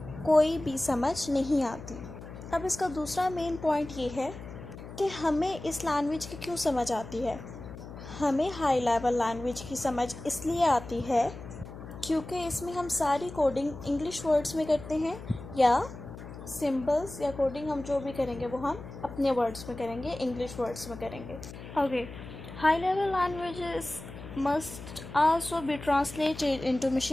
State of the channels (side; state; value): left; noise; hum, 13 dB below the sound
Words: कोई भी समझ नहीं आती। अब इसका दूसरा मेन पॉइंट ये है कि हमें इस लैंग्वेज की क्यों समझ आती है। हमें हाई लेवल लैंग्वेज की समझ इसलिए आती है क्योंकि इसमें हम सारी कोडिंग इंग्लिश वर्ड्स में करते हैं, या सिंबल्स या कोडिंग हम जो भी करेंगे वो हम अपने वर्ड्स में करेंगे, इंग्लिश वर्ड्स में करेंगे। Okay, high level languages must also be translated into